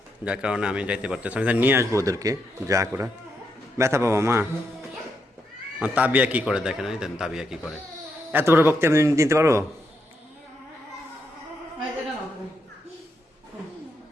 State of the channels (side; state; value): both; normal; correlation 0.80